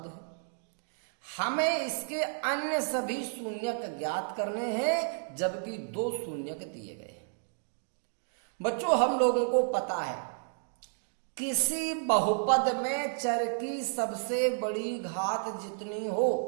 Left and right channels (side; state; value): left; silent; digital silence